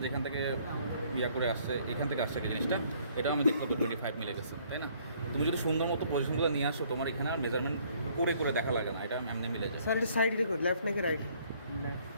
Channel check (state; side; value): inverted; both; correlation -0.62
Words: যেখান থেকে ইয়া করে আসছে এখান থেকে আসছে কি জিনিসটা, এটাও আমি দেখলাম তো 25 মিলে গেছে, তাই না? তুমি যদি সুন্দর মতো পজিশনগুলো নিয়ে আসো তোমার এখানে আর মেজারমেন্ট করে করে দেখা লাগে না, এটা এমনি মিলে যায়। স্যার এটা সাইড রেকর্ড লেফট নাকি রাইট?